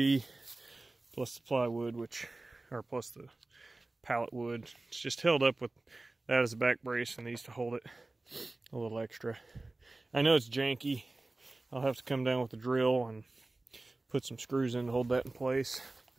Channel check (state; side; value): quieter; left; 3.0 dB